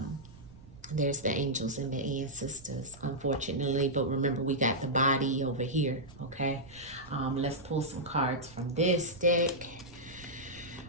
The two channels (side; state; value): right; noise; rumble, 21 dB below the sound